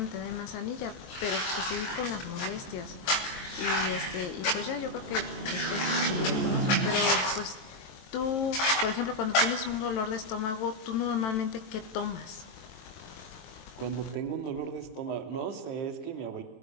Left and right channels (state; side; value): late; right; 23 ms